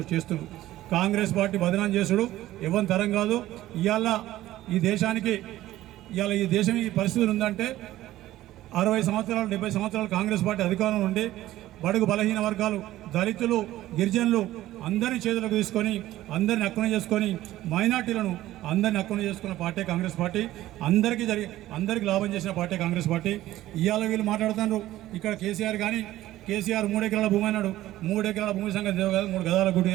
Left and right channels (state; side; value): quieter; left; 15.0 dB